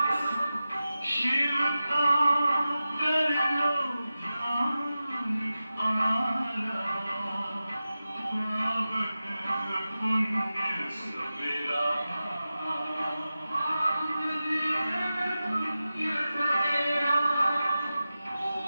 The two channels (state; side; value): inverted; both; correlation -0.94